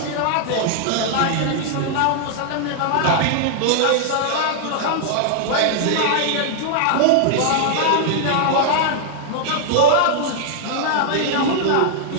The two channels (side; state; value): both; different; correlation -0.01